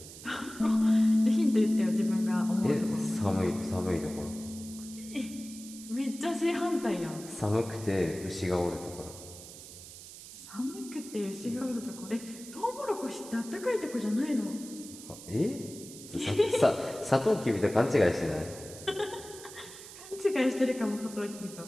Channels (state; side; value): noise; right; hiss, 15 dB below the sound